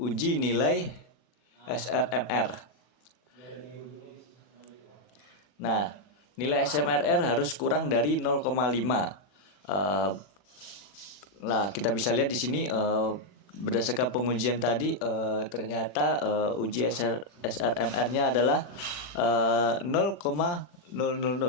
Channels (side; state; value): right; late; 40 ms